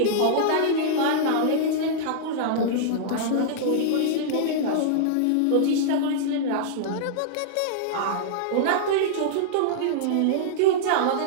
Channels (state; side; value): different; both; correlation -0.02